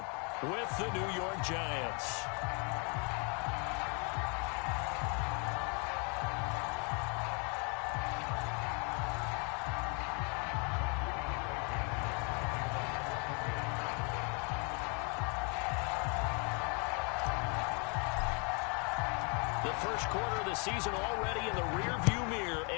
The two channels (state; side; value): quieter; right; 34.8 dB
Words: with the New York Giants. First quarter of the season already in the rearview mirror,